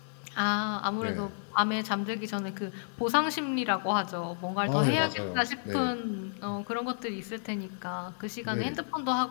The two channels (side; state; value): right; silent; digital silence